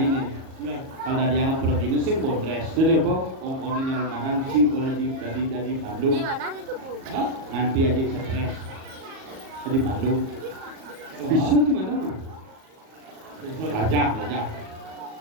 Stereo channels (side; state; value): left; late; 37 ms